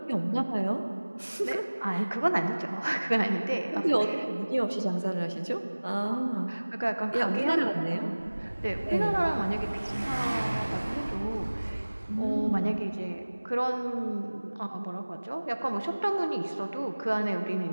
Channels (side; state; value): both; inverted; correlation -1.00